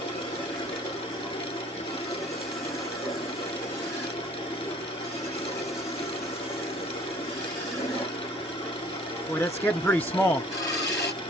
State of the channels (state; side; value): normal; both; correlation 0.54